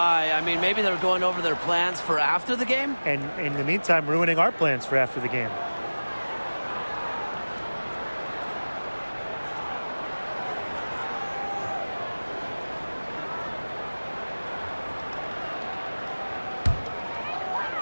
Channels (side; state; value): both; inverted; correlation -1.00